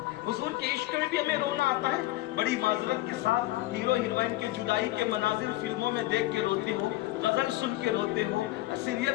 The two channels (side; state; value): right; quieter; 17.5 dB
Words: حضور کے عشق میں بھی ہمیں رونا آتا ہے. بڑی معذرت کے ساتھ ہیرو ہیروئن کی جدائی کے مناظر فلموں میں دیکھ کے روتے ہو, غزل سن کے روتے ہو,